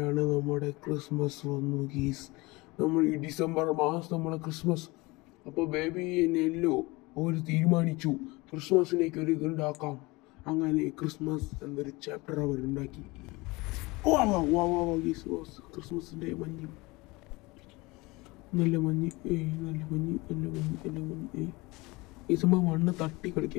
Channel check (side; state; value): right; quieter; 23.4 dB